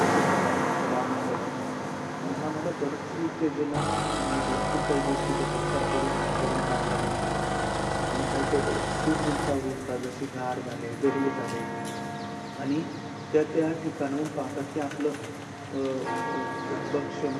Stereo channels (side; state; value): both; identical; correlation 1.00